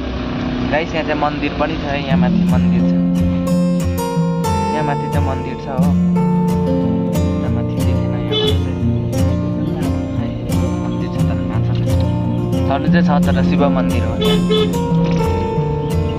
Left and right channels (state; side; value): identical; both; correlation 1.00